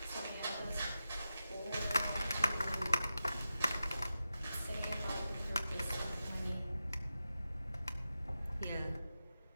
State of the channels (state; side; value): inverted; both; correlation -0.91